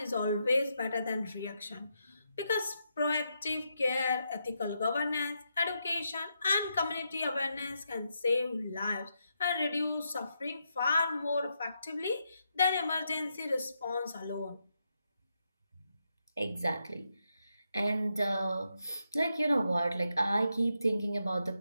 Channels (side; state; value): both; inverted; correlation -0.82